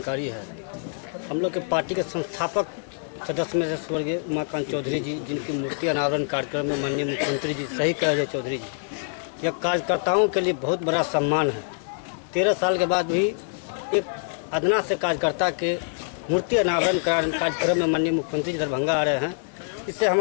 है, हम लोग के पार्टी के संस्थापक सदस्य में से स्वर्गीय उमाकांत चौधरी जी, जिनकी मूर्ति अनावरण कार्यक्रम में माननीय मुख्यमंत्री जी, सही कह रहे चौधरी जी, यह कार्यकर्ताओं के लिए बहुत बड़ा सम्मान है। 13 साल के बाद भी एक अदना से कार्यकर्ता के मूर्ति अनावरण कार्यक्रम में माननीय मुख्यमंत्री जी दरभंगा आ रहे हैं। इससे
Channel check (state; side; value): silent; right; 62 dB below the other